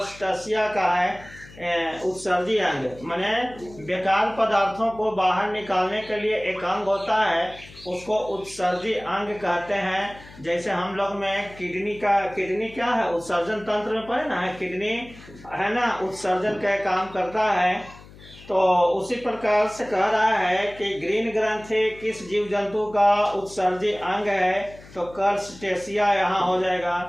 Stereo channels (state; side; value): noise; left; hum, 20 dB below the sound